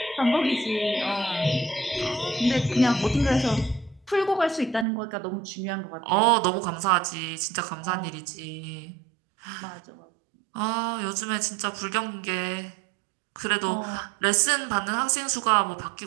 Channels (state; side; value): drops out; left; at 4.9 s